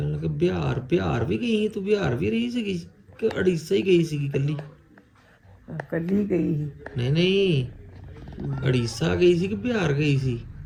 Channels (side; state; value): both; identical; correlation 1.00